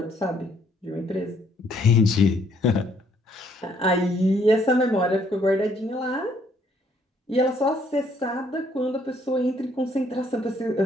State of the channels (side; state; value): both; normal; correlation 0.66